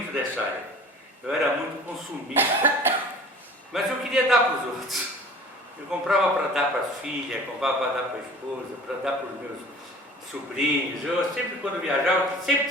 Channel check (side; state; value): both; normal; correlation 0.45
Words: dessa área. Eu era muito consumista. Mas eu queria dar para os outros. Eu comprava para dar para as filhas, comprava para dar para a esposa, para dar para os meus sobrinhos. Eu sempre, quando viajava,